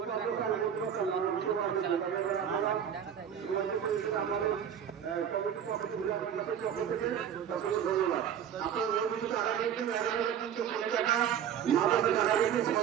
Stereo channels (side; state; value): left; quieter; 8.8 dB